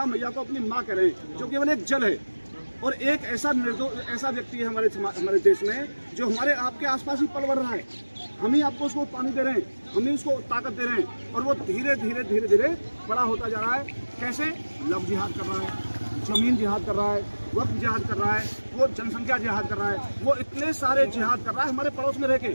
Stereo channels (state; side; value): inverted; both; correlation -1.00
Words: मैया को अपनी माँ कह रहे हैं, जो केवल एक जल है। और एक ऐसा व्यक्ति है हमारे देश में जो हमारे आपके आसपास ही पल बढ़ रहा है। हम ही आपको उसको पानी दे रहे हैं, हम ही उसको ताकत दे रहे हैं, और वो धीरे धीरे बड़ा होता जा रहा है। कैसे? लव जिहाद कर रहा है, जमीन जिहाद कर रहा है, वक्त जिहाद कर रहा है, वो जनसंख्या जिहाद कर रहा है, वो इतने सारे जिहाद कर रहा है हमारे पड़ोस में रह के।